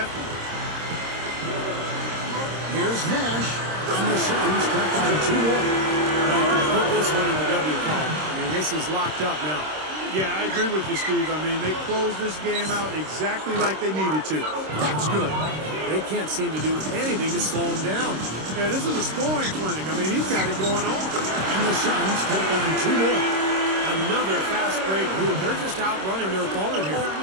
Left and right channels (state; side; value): late; left; 26 ms